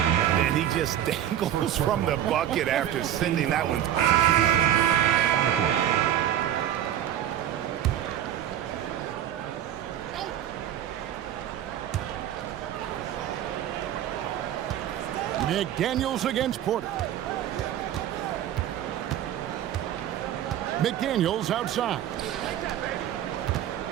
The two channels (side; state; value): left; quieter; 11.1 dB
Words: And he just dangles from the bucket after sending that one. McDaniels against Porter. McDaniels outside.